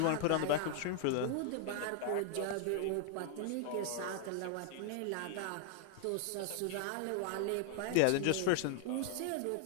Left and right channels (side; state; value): both; different; correlation -0.01